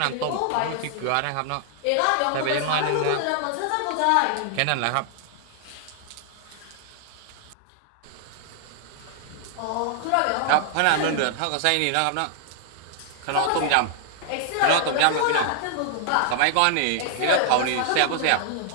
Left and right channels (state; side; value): different; both; correlation -0.01